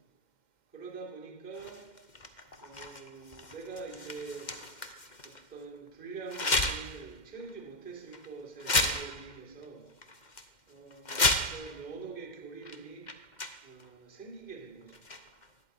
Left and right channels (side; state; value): right; late; 2.1 ms